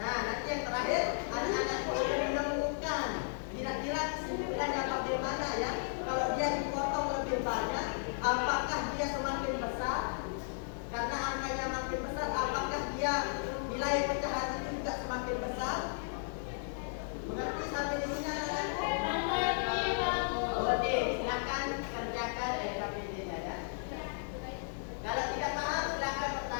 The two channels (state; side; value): silent; right; digital silence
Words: Nah, nanti yang terakhir anak-anakku akan menemukan kira-kira kesimpulannya bagaimana ya. Kalau dia dipotong lebih banyak, apakah dia semakin besar? Karena angkanya makin dia nilai pecahan itu juga semakin besar. Mengerti sampai di sini anak-anakku? Oke, silakan kerjakan LKPD-nya ya. Kalau tidak paham silakan